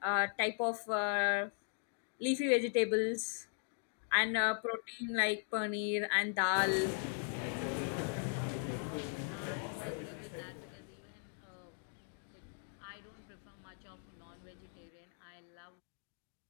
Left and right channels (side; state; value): right; silent; 52 dB below the other